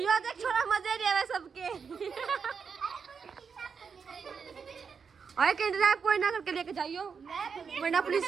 देख छोरा मजे ले रहा है सबके। अरे किडनैप कोई ना करके लेके जाइयो वरना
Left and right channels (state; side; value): quieter; left; 6.0 dB